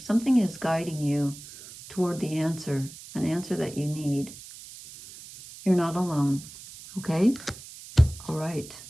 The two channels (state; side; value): noise; right; hiss, 16 dB below the sound